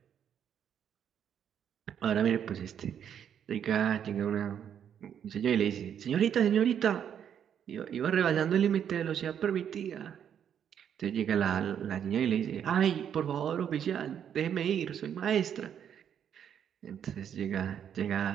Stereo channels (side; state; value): left; quieter; 8.8 dB